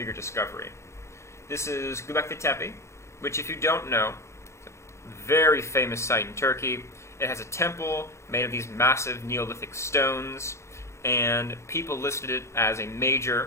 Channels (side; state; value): right; late; 0.14 ms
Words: discovery. This is Göbekli Tepe, which, if you don't know, is a very famous site in Turkey. It has a temple made of these massive Neolithic stones, and people listed it as a major